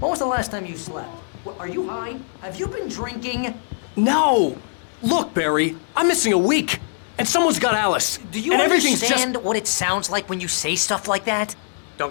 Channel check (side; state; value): right; silent; digital silence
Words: was the last time you slept? What, are you high? Have you been drinking? No! Look, Barry, I'm missing a week, and someone's got Alice. Do you and everything's understand what it sounds like when you say stuff like that? Don't